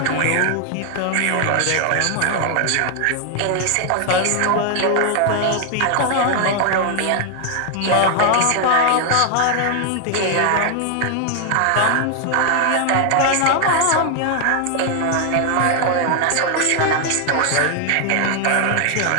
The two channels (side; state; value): both; different; correlation 0.00